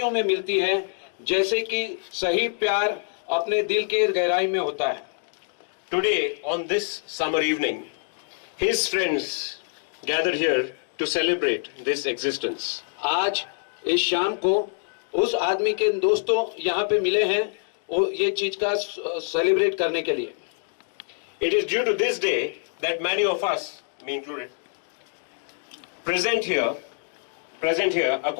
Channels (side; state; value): right; silent; 61 dB below the other